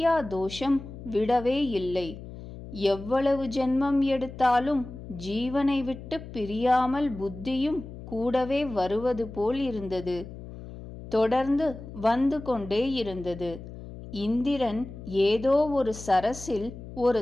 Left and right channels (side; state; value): left; noise; hum, 13 dB below the sound